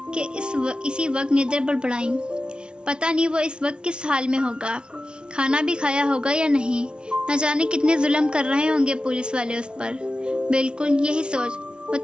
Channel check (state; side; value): late; left; 0.056 ms